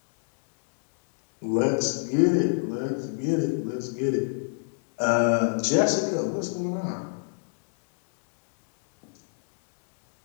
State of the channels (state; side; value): silent; right; digital silence